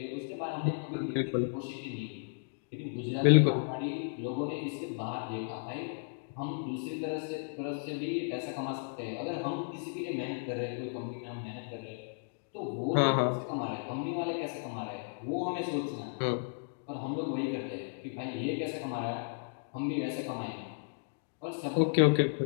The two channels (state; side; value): silent; right; digital silence